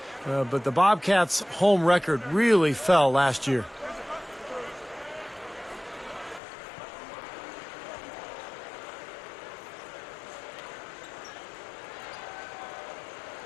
But the Bobcats' home record really fell last year.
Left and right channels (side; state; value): right; drops out; at 6.4 s